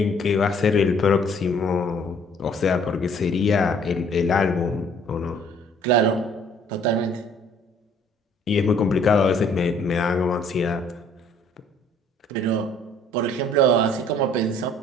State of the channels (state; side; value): normal; both; correlation 0.58